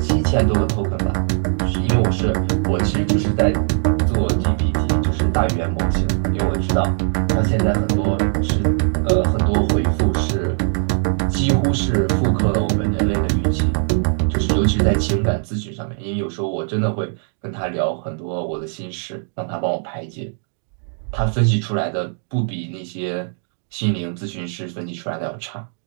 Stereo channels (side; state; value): left; silent; digital silence